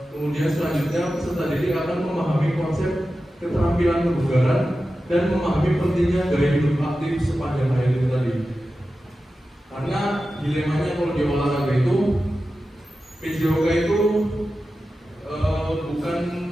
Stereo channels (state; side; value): normal; both; correlation 0.93